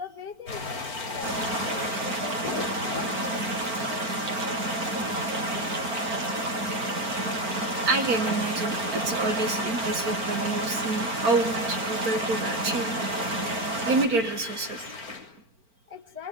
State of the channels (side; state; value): left; late; 4.4 ms